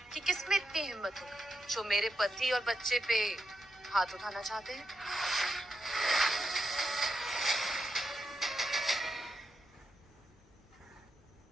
कि किसमें इतनी हिम्मत होगी जो मेरे पति और बच्चे पे हाथ उठाना चाहते हैं।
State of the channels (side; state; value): both; normal; correlation 0.86